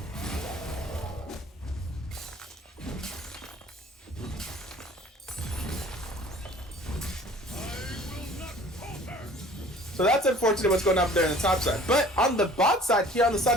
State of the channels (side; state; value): both; normal; correlation 0.50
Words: So that's unfortunate what's going on up there on the top side. But on the bot side, here on the